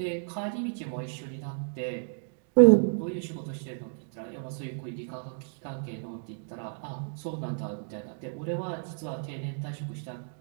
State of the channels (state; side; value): silent; left; digital silence